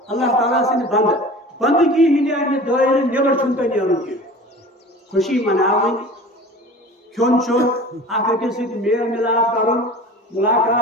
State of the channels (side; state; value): both; normal; correlation 0.39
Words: اللہ تعالیٰ سن بند بندگی ہند دائرے نیبر چھن تہ نیرن کی خوشی مناون کھون چون اکھ أکِس سۭتۍ میل ملاپ کرن